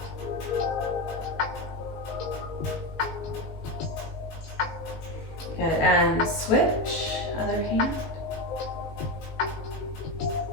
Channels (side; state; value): right; late; 19 ms